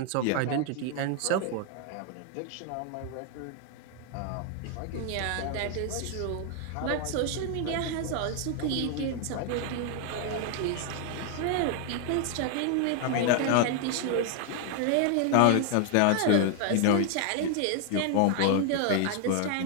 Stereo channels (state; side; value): different; both; correlation 0.00